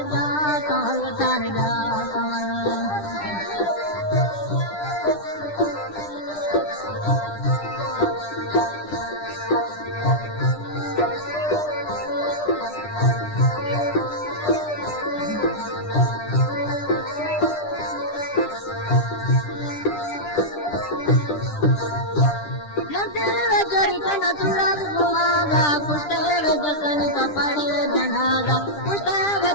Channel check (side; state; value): right; late; 10 ms